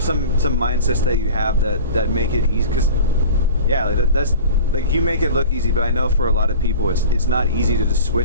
some mindsets that you have that make it easy? Because that's like, you make it look easy, but I know for a lot of people it's not easy to just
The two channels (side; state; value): both; inverted; correlation -0.40